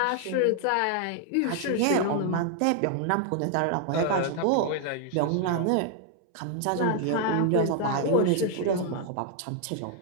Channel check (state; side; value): different; both; correlation 0.00